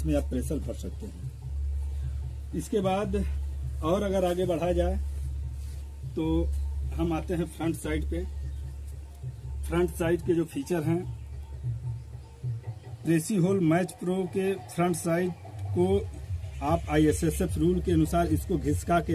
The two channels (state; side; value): identical; both; correlation 1.00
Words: आप प्रेशर भर सकते हैं। इसके बाद और अगर आगे बढ़ा जाए तो हम आते हैं फ्रंट साइड पे। फ्रंट साइड के जो फीचर हैं, प्रेसीहोल मैच प्रो के फ्रंट साइड को आप ISSF रूल के अनुसार इसको घिसका के